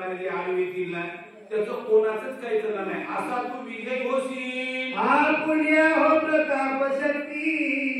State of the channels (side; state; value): both; identical; correlation 1.00